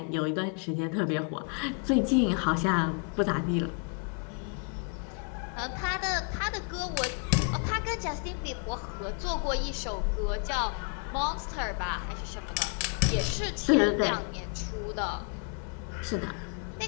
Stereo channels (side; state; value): right; quieter; 39.9 dB